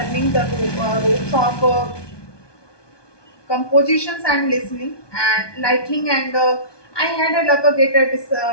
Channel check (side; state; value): right; late; 1.2 ms